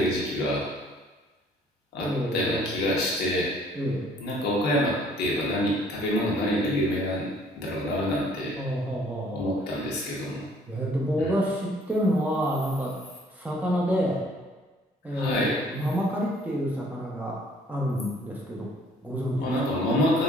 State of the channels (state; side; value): normal; both; correlation 0.59